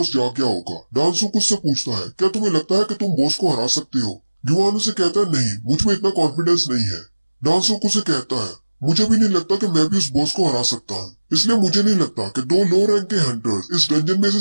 जाग गया होगा। डांगसुक उससे पूछता है, क्या तुम्हें लगता है कि तुम बॉस को हरा सकते हो? ह्यूमन उसे कहता है, नहीं, मुझ में इतना कॉन्फिडेंस नहीं है। डांगसुक उसे कहता है, मुझे भी नहीं लगता कि मैं भी उस बॉस को हरा सकता हूँ, इसलिए मुझे नहीं लगता कि 2 लो रैंक के हंटर्स इस डंजन में से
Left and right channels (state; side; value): inverted; both; correlation -1.00